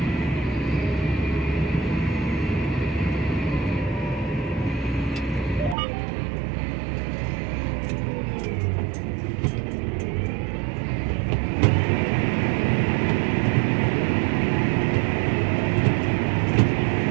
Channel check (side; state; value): left; drops out; at 5.8 s